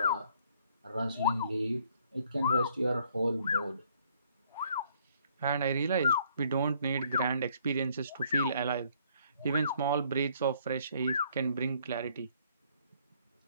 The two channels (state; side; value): inverted; both; correlation -0.63